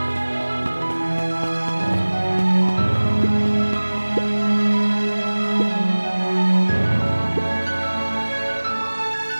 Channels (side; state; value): both; inverted; correlation -1.00